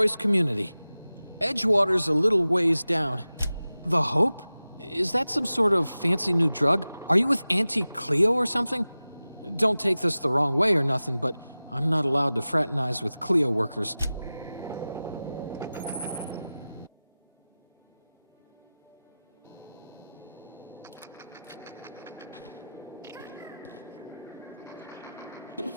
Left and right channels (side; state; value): both; inverted; correlation -0.96